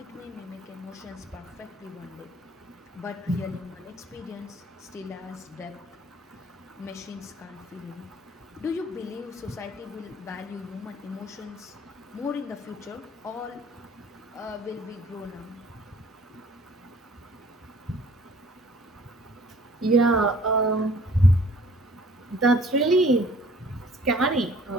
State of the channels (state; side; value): normal; both; correlation 0.54